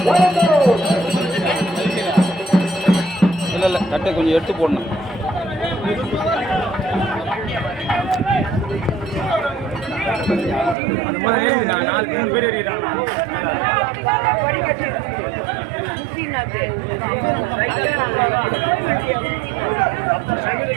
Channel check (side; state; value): left; drops out; at 10.8 s